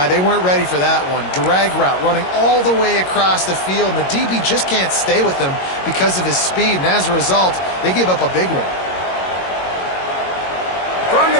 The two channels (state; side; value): late; right; 22 ms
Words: They weren't ready for that one. Drag route running all the way across the field, and the DB just can't stay with him because of his speed, and as a result, they give up a big one. From